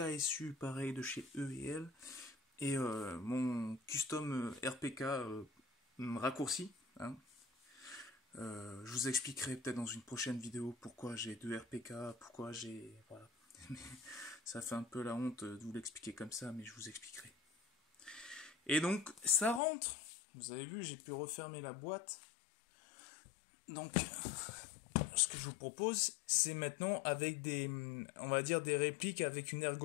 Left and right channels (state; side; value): drops out; right; at 19.6 s